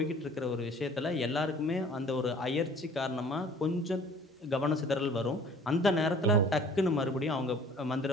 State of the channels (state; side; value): normal; both; correlation 0.51